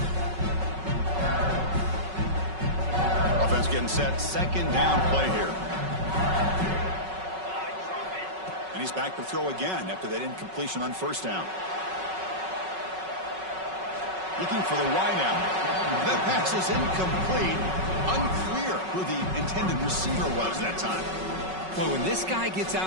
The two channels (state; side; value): late; left; 5.4 ms